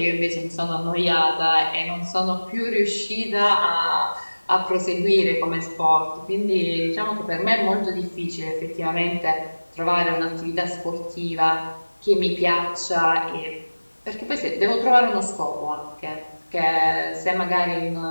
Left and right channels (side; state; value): both; inverted; correlation -1.00